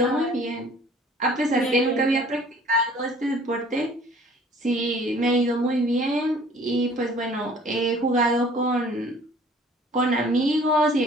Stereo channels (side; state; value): both; normal; correlation 0.52